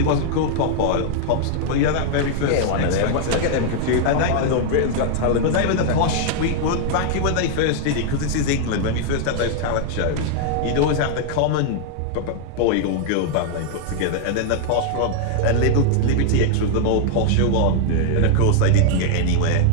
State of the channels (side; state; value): both; different; correlation 0.00